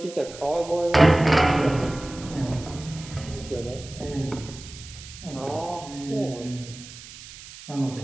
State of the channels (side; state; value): right; noise; hiss, 16 dB below the sound